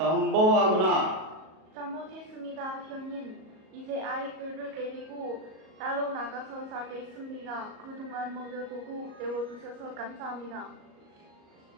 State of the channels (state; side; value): late; left; 38 ms